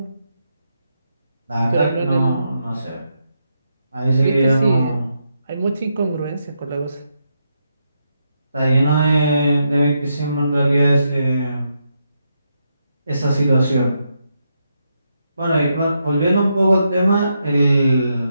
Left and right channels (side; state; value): both; inverted; correlation -0.82